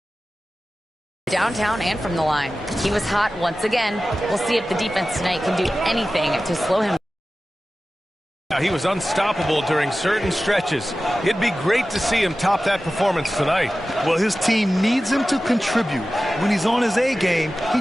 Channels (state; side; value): normal; both; correlation 0.95